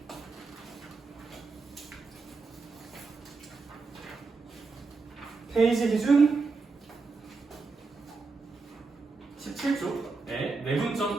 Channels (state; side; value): quieter; left; 4.2 dB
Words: 페이지 기준 17쪽. 네,